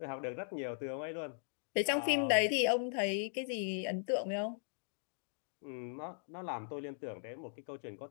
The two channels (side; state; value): right; silent; digital silence